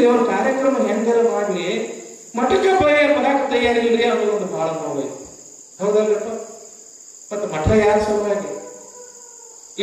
ಅವ್ರ ಕಾರ್ಯಕ್ರಮ ಹೆಂಗಾರ ಮಾಡ್ಲಿ ಮಠಕ್ಕೆ ಬರಾಕ್ ತಯಾರಿಲ್ರಿ ಅನ್ನೋದು ಒಂದು ಬಹಳ ನೋವು ಐತಿ. ಹೌದಲ್ರಪ್ಪ? ಮತ್ತ ಮಠ ಯಾರ ಸಲುವಾಗಿ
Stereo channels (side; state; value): both; identical; correlation 1.00